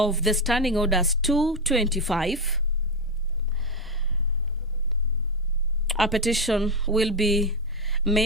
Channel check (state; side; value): normal; both; correlation 0.11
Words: the Standing Orders 225, a petition will be